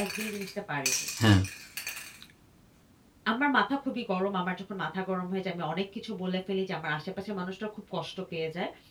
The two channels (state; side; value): identical; both; correlation 1.00